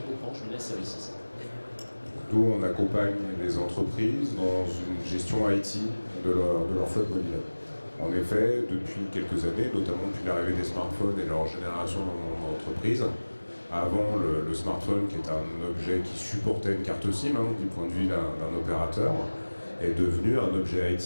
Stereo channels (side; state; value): both; inverted; correlation -1.00